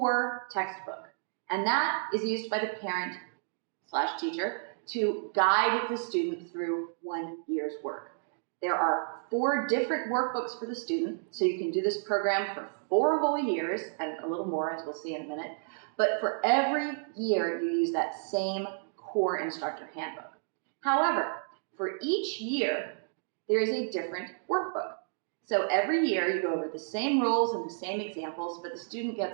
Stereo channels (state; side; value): silent; left; digital silence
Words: textbook, and that is used by the parent/teacher to guide the student through 1 year's work. There are 4 different workbooks for the student, so you can do this program for 4 whole years, and a little more, as we'll see in a minute. But for every year, you use that same core instructor handbook. However, for each year, there is a different workbook. So every year, you go over the same rules and the same examples, but the student